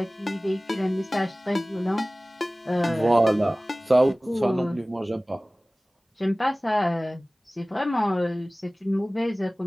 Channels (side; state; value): both; normal; correlation 0.98